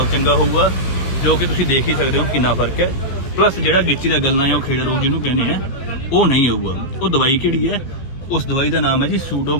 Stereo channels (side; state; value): right; late; 16 ms